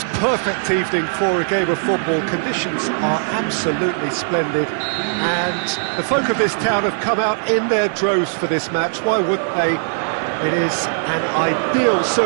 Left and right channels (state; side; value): silent; left; digital silence